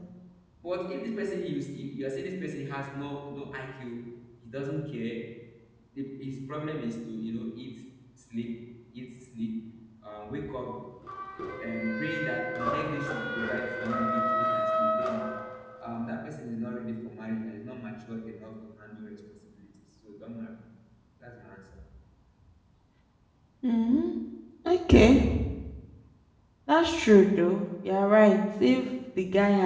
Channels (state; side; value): identical; both; correlation 1.00